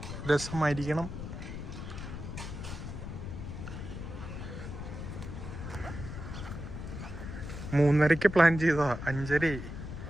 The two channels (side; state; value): left; noise; rumble, 8 dB below the sound